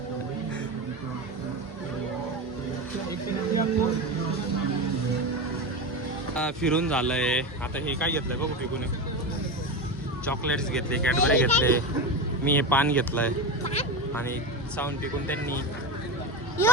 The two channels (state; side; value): normal; both; correlation 0.21